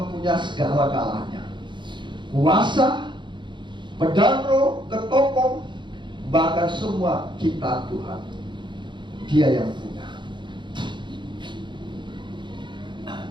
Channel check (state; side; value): late; left; 0.23 ms